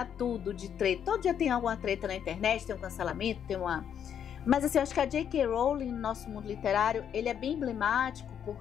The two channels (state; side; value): quieter; right; 8.7 dB